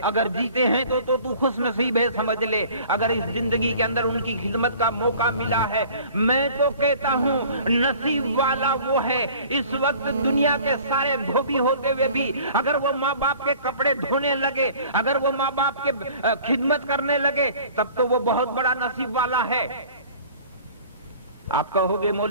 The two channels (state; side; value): inverted; both; correlation -0.48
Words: اگر جیتے ہیں تو خوش نصیب ہے سمجھ لے، اگر اس زندگی کے اندر ان کی خدمت کا موقع ملا ہے، میں تو کہتا ہوں نصیب والا وہ ہے۔ اس وقت دنیا کے سارے دھوبی ہوتے ہوئے بھی اگر وہ ماں باپ کے کپڑے دھونے لگے، اگر وہ ماں باپ کے خدمت کرنے لگے، تب تو وہ بہت بڑا نصیب والا ہے۔ آپ کہو گے